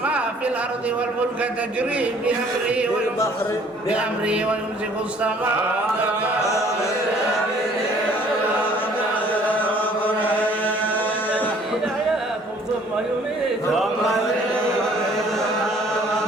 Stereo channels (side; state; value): both; normal; correlation 0.57